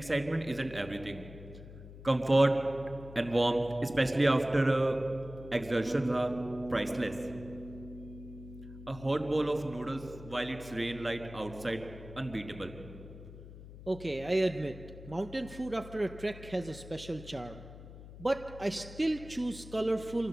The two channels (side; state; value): left; noise; hum, 15 dB below the sound